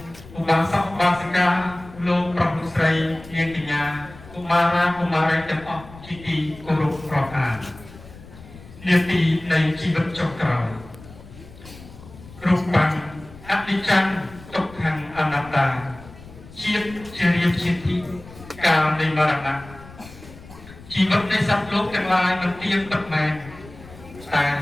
ឧបាសកឧបាសិកាលោកប្រុសលោកស្រីនាងកញ្ញាកុមារាកុមារីទាំងអស់ជាទីគោរពរាប់អាននាទីនៃជីវិតចុងក្រោយរូបបានអនិច្ចំទុក្ខំអនត្តាជាតិជារៀបជាទីកាលនៃមរណៈជីវិតនៃសត្វលោកទាំងឡាយមិនទៀងពិតមែនតែ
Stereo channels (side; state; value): left; noise; rumble, 19 dB below the sound